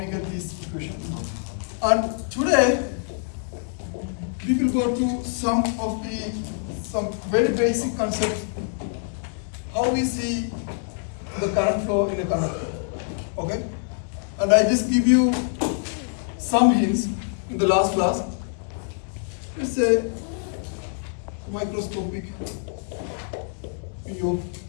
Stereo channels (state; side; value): silent; right; digital silence